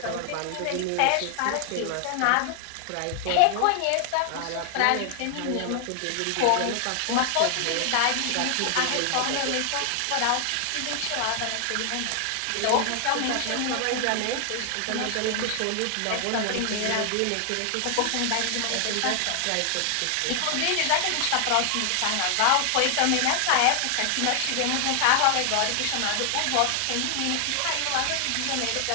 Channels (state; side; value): different; both; correlation 0.00